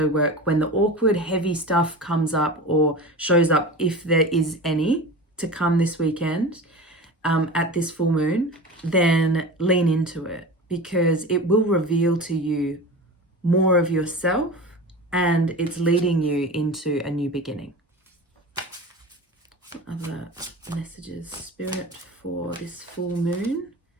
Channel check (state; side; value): normal; both; correlation 0.31